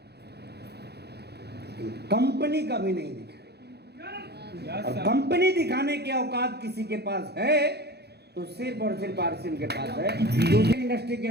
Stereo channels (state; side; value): late; left; 0.48 ms